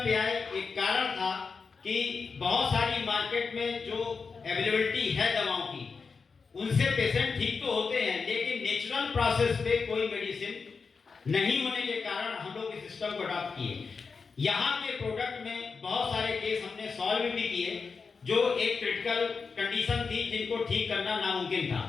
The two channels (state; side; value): quieter; right; 5.0 dB